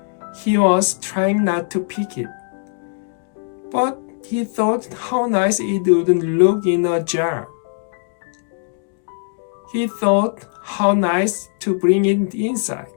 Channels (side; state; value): right; silent; digital silence